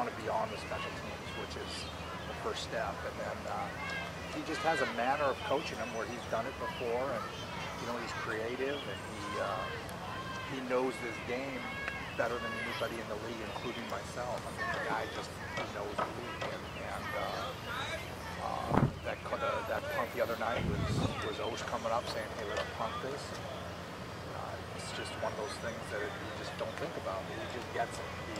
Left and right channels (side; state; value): both; identical; correlation 1.00